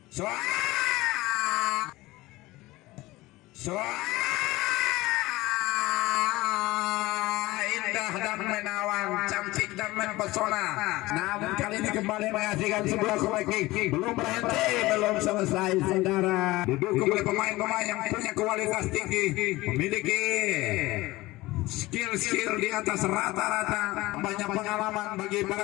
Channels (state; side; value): quieter; right; 19.4 dB